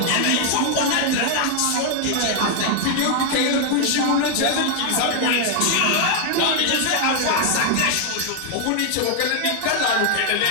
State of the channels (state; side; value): different; both; correlation 0.00